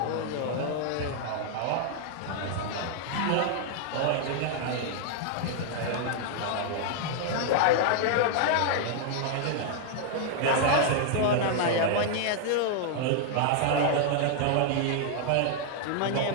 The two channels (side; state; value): both; different; correlation 0.00